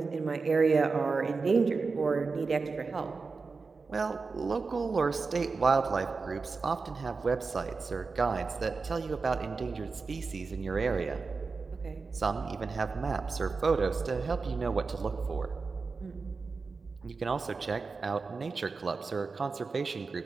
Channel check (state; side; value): quieter; left; 4.4 dB